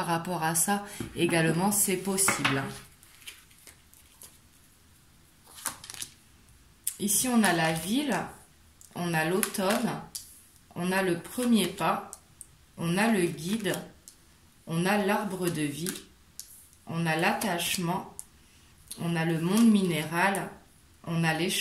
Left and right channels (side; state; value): both; identical; correlation 1.00